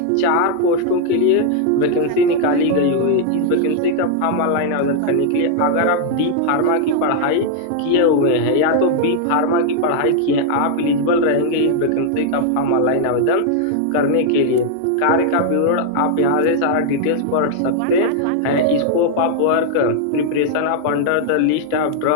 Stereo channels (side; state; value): both; different; correlation 0.00